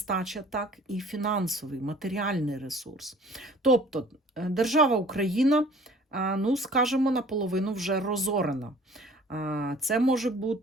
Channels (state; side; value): normal; both; correlation 0.51